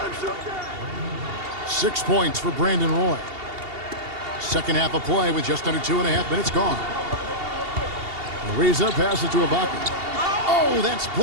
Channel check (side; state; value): left; late; 2.8 ms